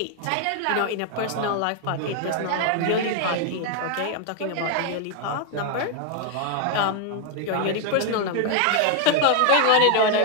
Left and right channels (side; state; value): both; different; correlation 0.00